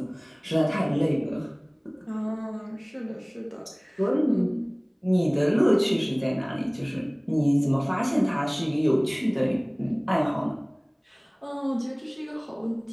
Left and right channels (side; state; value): both; identical; correlation 1.00